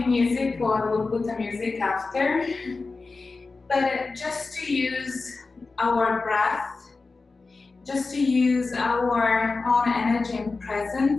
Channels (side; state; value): right; quieter; 3.9 dB